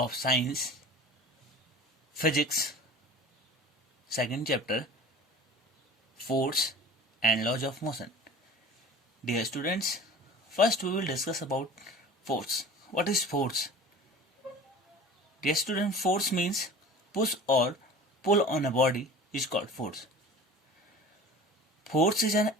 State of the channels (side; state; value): both; normal; correlation 0.40